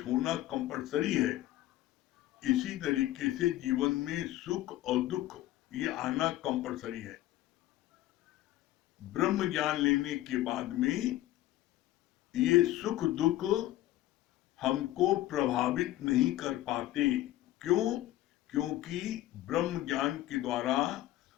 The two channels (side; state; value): right; quieter; 15.0 dB